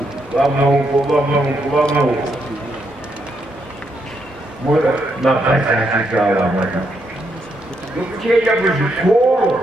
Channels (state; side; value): normal; both; correlation 0.78